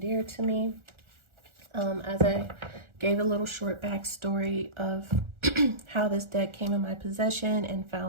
dear to me. As I gave a little short backstory of how this deck came in my possession and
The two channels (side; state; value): left; late; 1.4 ms